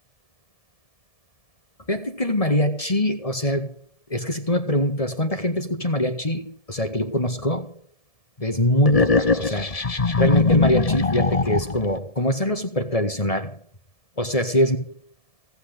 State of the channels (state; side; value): late; right; 1.7 ms